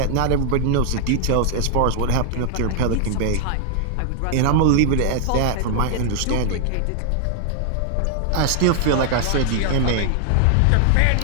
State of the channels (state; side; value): different; both; correlation 0.00